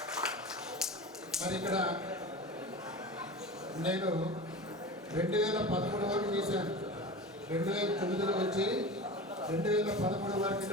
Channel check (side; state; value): both; normal; correlation 0.31